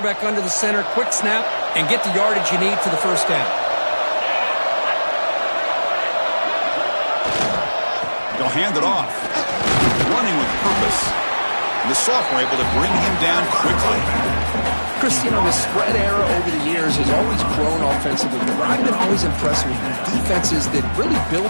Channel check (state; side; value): inverted; both; correlation -1.00